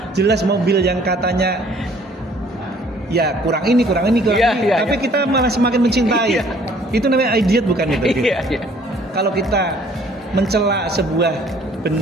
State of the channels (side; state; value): both; normal; correlation 0.58